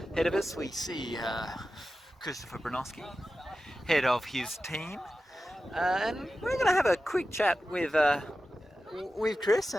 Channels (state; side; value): normal; both; correlation 0.93